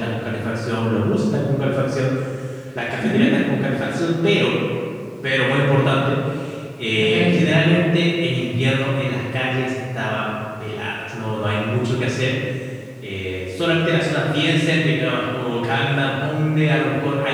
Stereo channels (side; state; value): both; identical; correlation 1.00